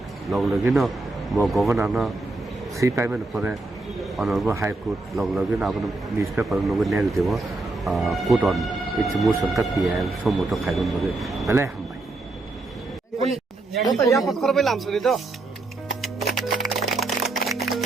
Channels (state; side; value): quieter; left; 3.1 dB